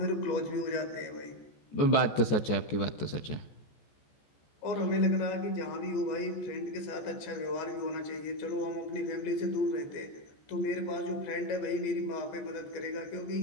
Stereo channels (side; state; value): right; late; 14 ms